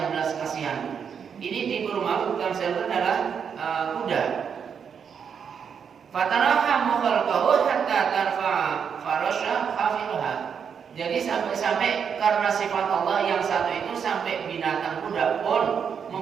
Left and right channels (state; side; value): quieter; left; 7.1 dB